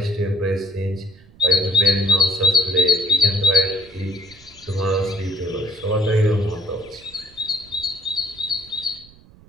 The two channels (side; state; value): right; noise; rumble, 25 dB below the sound